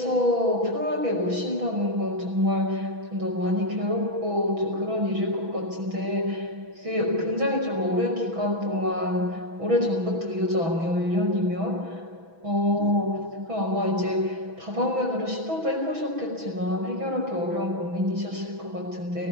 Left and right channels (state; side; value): late; left; 6.1 ms